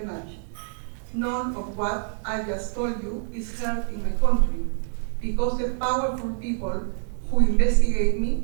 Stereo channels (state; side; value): silent; left; digital silence